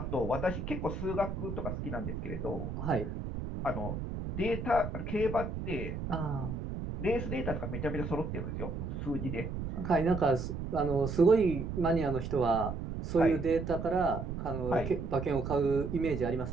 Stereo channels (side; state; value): right; noise; rumble, 5 dB below the sound